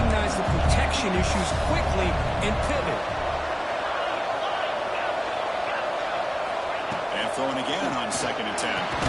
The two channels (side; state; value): both; identical; correlation 1.00